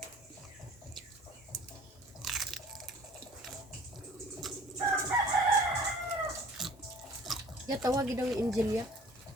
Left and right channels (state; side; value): normal; both; correlation 0.49